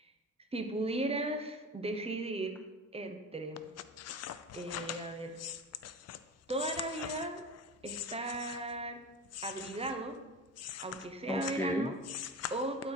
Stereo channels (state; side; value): normal; both; correlation 0.32